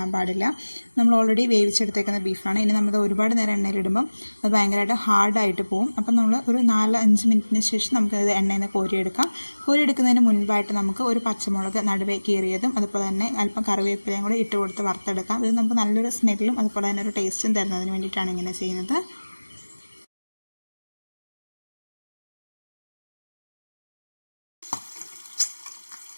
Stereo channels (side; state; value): both; inverted; correlation -1.00